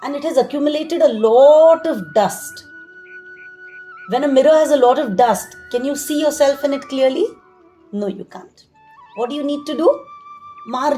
and it has accumulated a lot of dust. When a mirror has a lot of dust, can you see yourself in it clearly? No, you can't. What do you need to do?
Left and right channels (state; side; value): identical; both; correlation 1.00